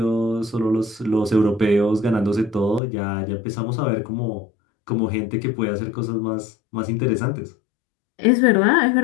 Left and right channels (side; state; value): right; drops out; at 2.8 s